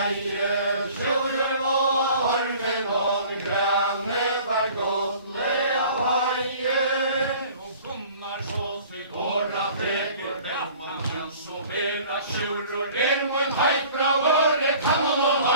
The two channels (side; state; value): both; inverted; correlation -0.48